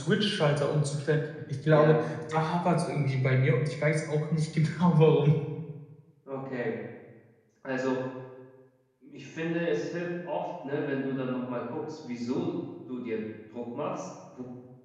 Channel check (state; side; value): identical; both; correlation 1.00